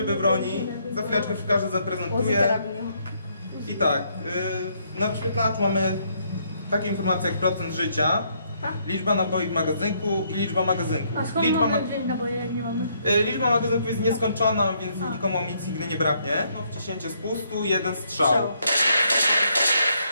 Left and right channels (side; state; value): both; inverted; correlation -0.71